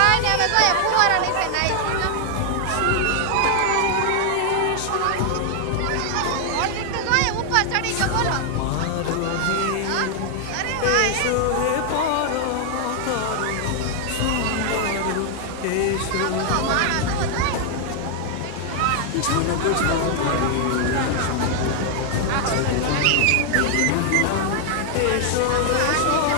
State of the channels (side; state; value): both; different; correlation 0.00